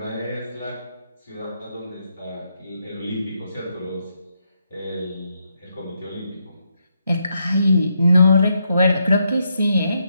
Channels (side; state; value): both; inverted; correlation -0.79